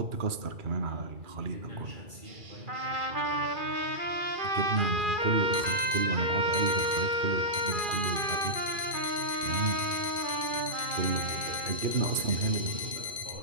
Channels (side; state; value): left; late; 2.4 ms